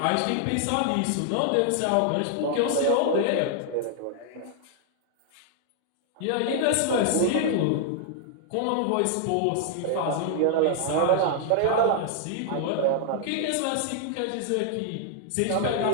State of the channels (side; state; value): both; different; correlation -0.01